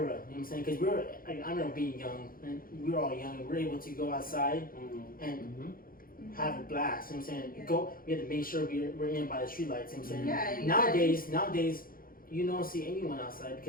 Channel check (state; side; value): late; right; 0.42 ms